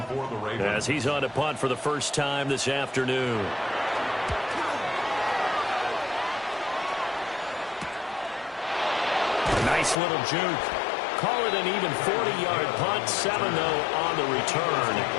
as he's on to punt for the first time this afternoon. Nice little juke. Call it an even 40-yard punt. 7, though, on the return.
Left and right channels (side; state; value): right; drops out; at 10.0 s